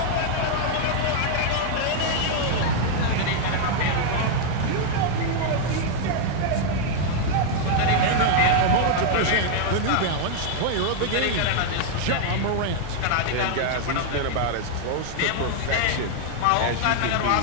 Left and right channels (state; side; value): different; both; correlation 0.00